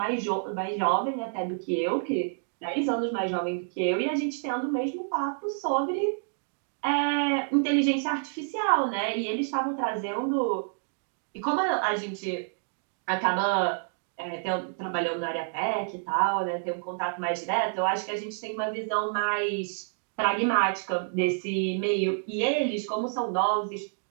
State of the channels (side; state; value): left; silent; digital silence